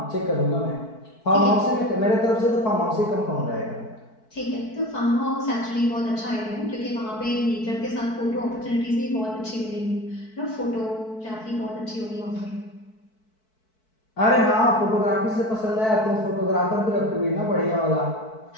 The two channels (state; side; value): late; right; 4.6 ms